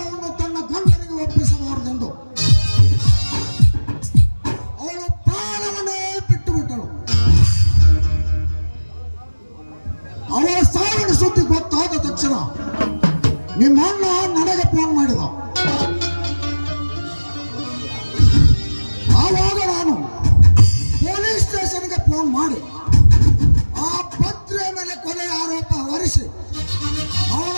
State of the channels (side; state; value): both; inverted; correlation -1.00